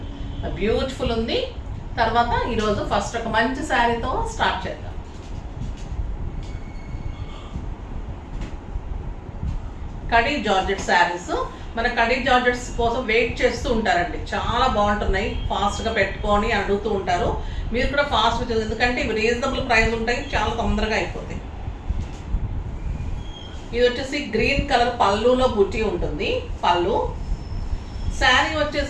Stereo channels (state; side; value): identical; both; correlation 1.00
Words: బ్యూటిఫుల్ ఉంది. తర్వాత ఈరోజు ఫస్ట్ ఒక మంచి శారీతో స్టార్ట్ చేద్దాం. కడీ జార్జెట్ శారీస్, మన కడీ జార్జెట్స్ కోసం వెయిట్ చేస్తూ ఉంటారండి, చాలా బాగుంటున్నాయి, ఫాస్ట్గా పెట్టుకొని అడుగుతూ ఉంటారు. మీరు కూడా ఫాస్ట్గా, ఎందుకంటే ఇవి రీజనబుల్ ప్రైస్ ఉంటాయి, చాలా తొందరగా అయిపోతాయి. ఇది వచ్చేసి గ్రీన్ కలర్ పళ్ళులో బుట్టి ఉంటుంది. పళ్ళు శారీ